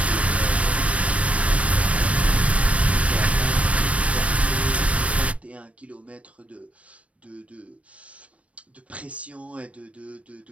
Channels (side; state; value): left; late; 0.064 ms